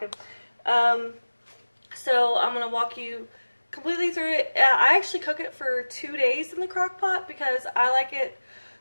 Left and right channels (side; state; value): both; inverted; correlation -1.00